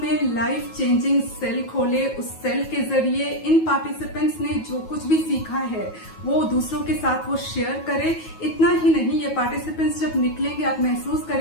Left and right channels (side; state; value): right; late; 9.3 ms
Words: में लाइफ चेंजिंग सेल खोले, उस सेल के जरिए इन पार्टिसिपेंट्स ने जो कुछ भी सीखा है वो दूसरों के साथ वो शेयर करे। इतना ही नहीं, ये पार्टिसिपेंट्स जब निकलेंगे आप महसूस